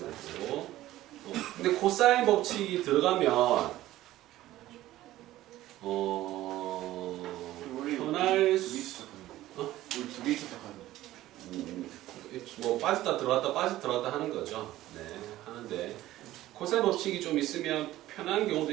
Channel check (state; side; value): quieter; left; 15.2 dB